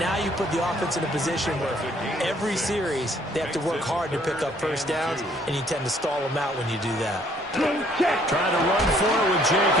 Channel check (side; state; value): both; normal; correlation 0.62